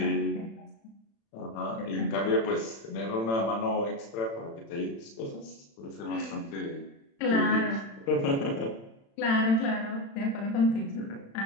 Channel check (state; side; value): late; right; 36 ms